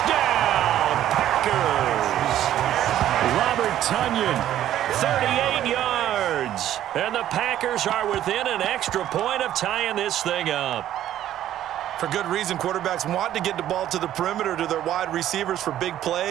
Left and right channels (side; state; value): left; quieter; 12.1 dB